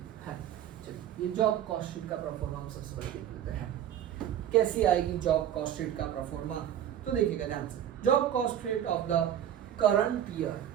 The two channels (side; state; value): left; quieter; 10.5 dB